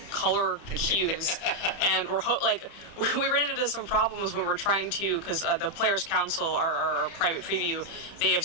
color cues, and we ran into some problems when we're trying to, because the Players Council, our private preview, they have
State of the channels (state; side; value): late; right; 30 ms